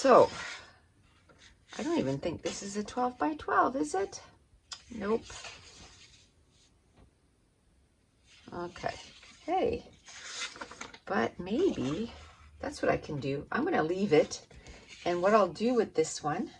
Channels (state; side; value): identical; both; correlation 1.00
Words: I don't even think this is a 12 by 12, is it? Nope. Okay. Hey, but maybe that's what I can do. I'm going to leave it, and what I'll do with this one,